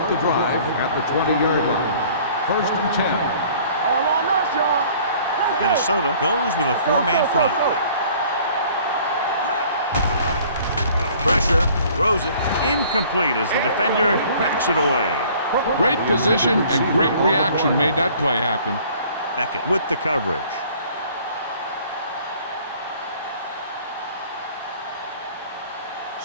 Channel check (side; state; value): both; inverted; correlation -0.53